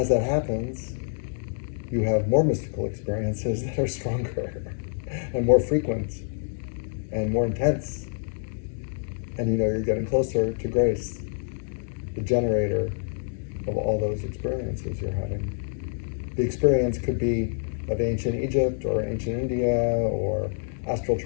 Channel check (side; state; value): right; silent; digital silence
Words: that happens, you have more mystical experiences that are stronger and more frequent and more intense. And you're getting closer to grace, the generator of all those experiences you're having. The experience could be of ancient Egypt or ancient India or astral,